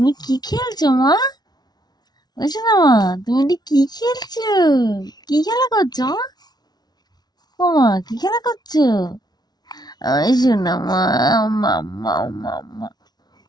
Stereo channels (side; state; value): right; late; 0.19 ms